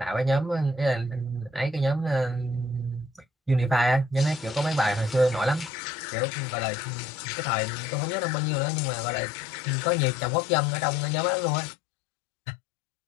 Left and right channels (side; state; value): right; drops out; at 5.7 s